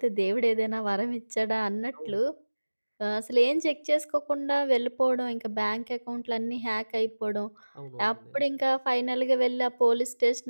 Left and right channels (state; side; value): inverted; both; correlation -1.00